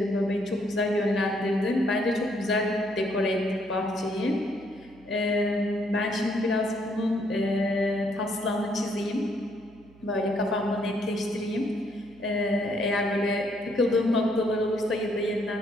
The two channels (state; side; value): noise; right; hum, 25 dB below the sound